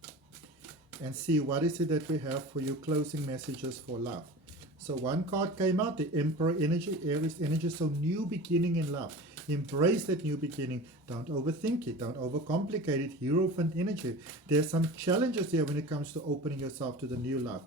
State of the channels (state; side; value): normal; both; correlation 0.35